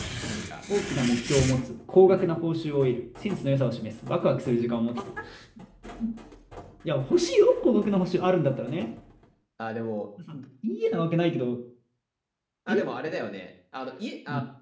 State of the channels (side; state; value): both; identical; correlation 1.00